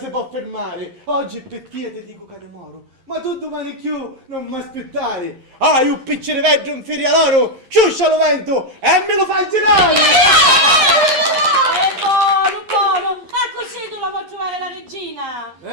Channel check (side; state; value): left; late; 11 ms